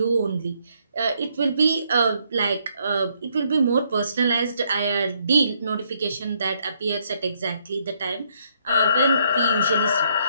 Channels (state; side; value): inverted; both; correlation -0.71